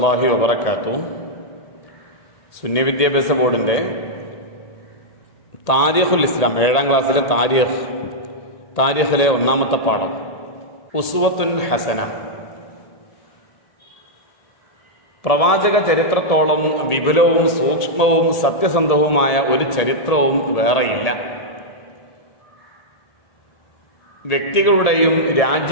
വബറകാതുഹു. സുന്നി വിദ്യാഭ്യാസ ബോർഡിൻ്റെ താരിഖുൽ ഇസ്ലാം 7ാം ക്ലാസ്സിലെ താരിഖിലെ 1ാമത്തെ പാഠം ഉസ്വത്തുൻ ഹസന. പ്രവാചക ചരിത്രത്തോളം വിപുലവും സൂക്ഷ്മവും സത്യസന്ധവുമായ ഒരു ചരിത്രവും വേറെയില്ല. വ്യക്തികളുടെയും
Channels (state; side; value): late; right; 1.8 ms